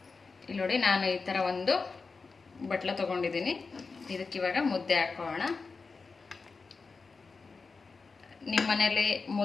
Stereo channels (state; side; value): quieter; right; 4.4 dB